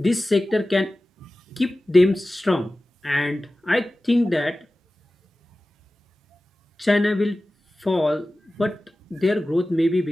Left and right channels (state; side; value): normal; both; correlation 0.96